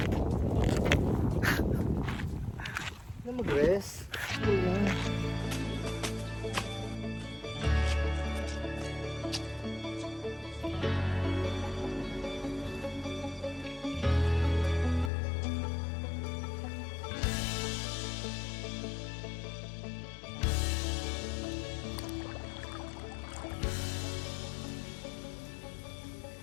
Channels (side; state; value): right; drops out; at 15.1 s